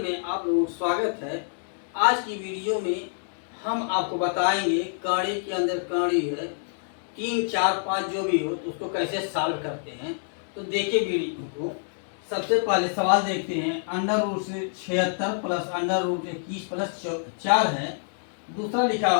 में आप लोगों का स्वागत है। आज की वीडियो में हम आपको बताएंगे काढ़े के अंदर काढ़ी है 3, 4, 5 जो भी हो तो उसको कैसे सॉल्व करते हैं। तो देखिए वीडियो को। सबसे पहले सवाल देखते हैं। अंडर रूट से 76 प्लस अंडर रूट 21 प्लस 4 है। दूसरा लिखा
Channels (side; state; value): right; silent; digital silence